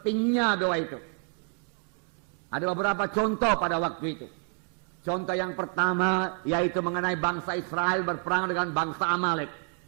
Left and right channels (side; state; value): left; quieter; 39.9 dB